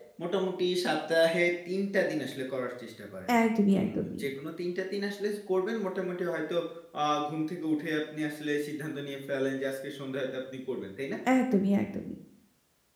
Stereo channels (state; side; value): identical; both; correlation 1.00